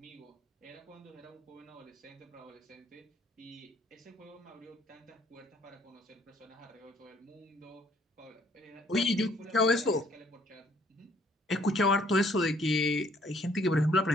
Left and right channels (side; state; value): both; normal; correlation 0.63